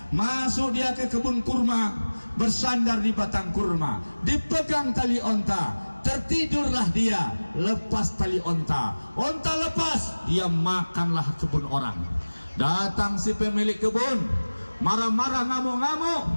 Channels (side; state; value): both; inverted; correlation -1.00